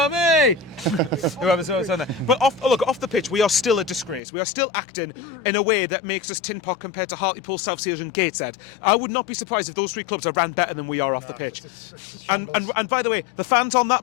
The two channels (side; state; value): right; drops out; at 4.2 s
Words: But off the pitch, we are still a disgrace. We are still acting in a way that makes us tin pot compared to Hartlepool, South Seals and Gateshead. I would not be surprised if those three clubs are ran better than we are off the pitch. It's a shambles. And by the way, the fans on